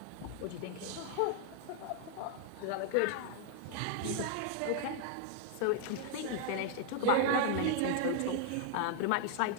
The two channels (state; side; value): different; both; correlation 0.00